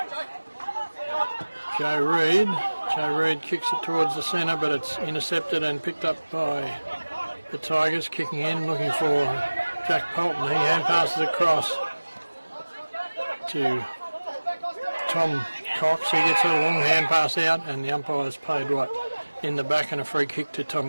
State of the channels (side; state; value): both; inverted; correlation -1.00